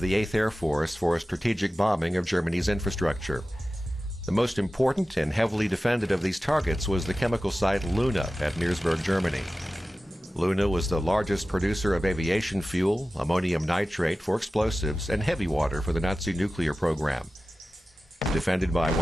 the 8th Air Force for strategic bombing of Germany's infrastructure. The most important and heavily defended of these targets was the chemical site Luna at Meresburg, Germany. Luna was the largest producer of aviation fuel, ammonium nitrate for explosives, and heavy water for the Nazi nuclear program. Defended by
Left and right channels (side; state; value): both; normal; correlation 0.95